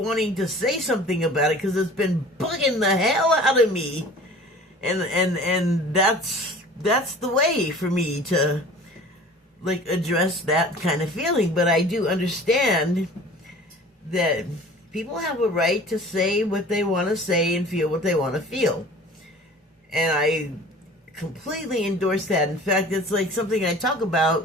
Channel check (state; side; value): normal; both; correlation 0.45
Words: to say something about it because it's been bugging the hell out of me. And that's the way for me to like address that kind of feeling. But I do understand that people have a right to say what they want to say and feel what they want to feel. And I completely endorse that. In fact, it's like something I talk